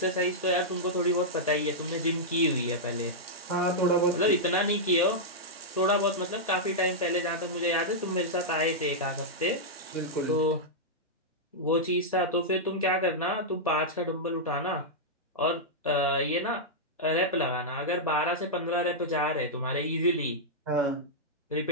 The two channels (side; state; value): both; normal; correlation -0.08